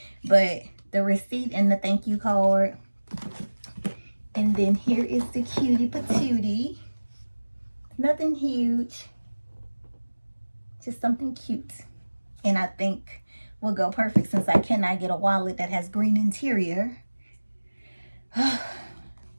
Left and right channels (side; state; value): both; inverted; correlation -1.00